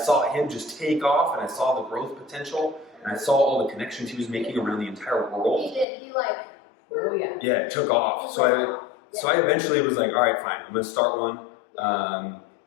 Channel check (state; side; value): drops out; right; at 5.9 s